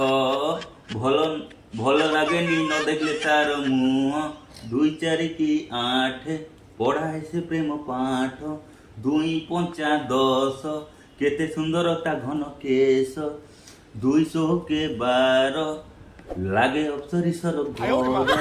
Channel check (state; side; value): identical; both; correlation 1.00